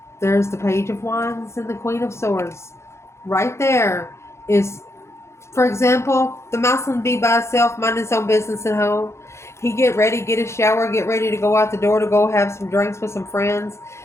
There's the Page of Wands and the Queen of Swords. Right there is, for example, the masculine be by himself, mind his own business at home. He get ready, get a shower, get ready to go out the door to go have some drinks with some friends.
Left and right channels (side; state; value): right; late; 0.13 ms